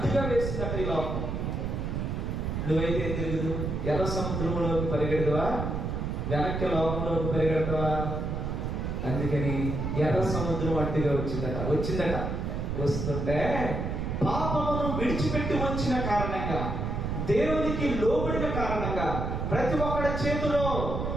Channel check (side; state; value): right; noise; rumble, 2 dB below the sound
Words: వేసిందట ఈ లోకం. నువ్వైతే ఏం తెలియదు? ఎర్ర సముద్రంలోకి పరిగెడతావా? వెనక్కి లోకంలోకి పరిగెడతావా? అందుకని ఎర్ర సముద్రం అడ్డుగా వచ్చిందట. వస్తుంటే పాపమును విడిచిపెట్టి వచ్చిన కారణంగా, దేవునికి లోబడిన కారణంగా, ప్రతి ఒక్కడి చేతిలో